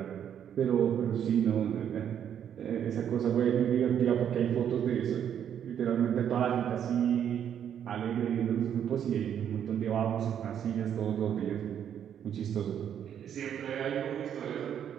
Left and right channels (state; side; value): quieter; left; 9.1 dB